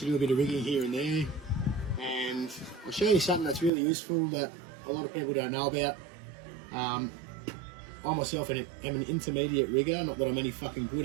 you do a bit of rigging here and there. And I'll show you something that's really useful that a lot of people don't know about. I myself am an intermediate rigger, not that I'm any fucking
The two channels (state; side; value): drops out; left; at 3.7 s